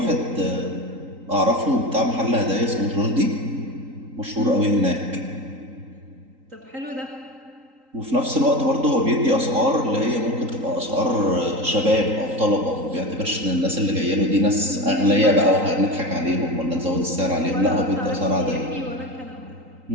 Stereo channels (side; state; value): left; late; 3.8 ms